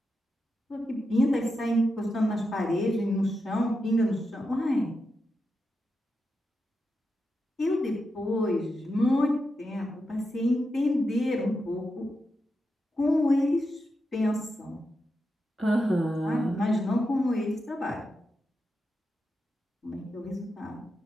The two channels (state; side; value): normal; both; correlation 0.87